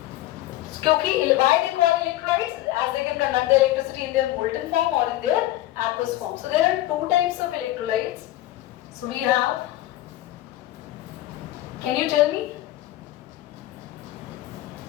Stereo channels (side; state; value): right; quieter; 15.4 dB